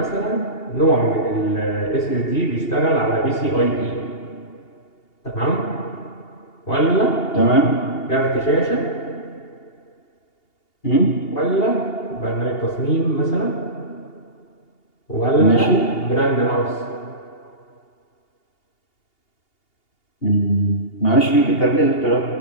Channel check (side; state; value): right; late; 2.8 ms